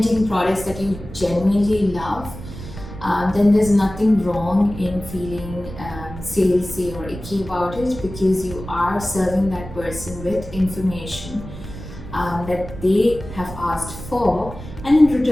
products that you genuinely love. Then there's nothing wrong in feeling salesy or icky about it, because you are serving that person with information that they have asked for, and in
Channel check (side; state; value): right; noise; rumble, 12 dB below the sound